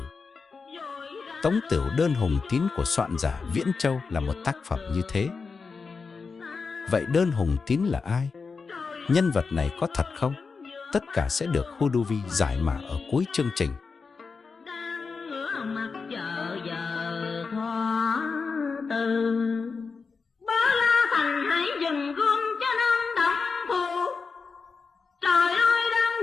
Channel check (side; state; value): right; quieter; 4.8 dB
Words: Tống Tửu Đơn Hùng Tín của soạn giả Viễn Châu là một tác phẩm như thế. Vậy Đơn Hùng Tín là ai? Nhân vật này có thật không? Tất cả sẽ được Huduvi giải mã ở cuối chương trình. Trời ơi, đang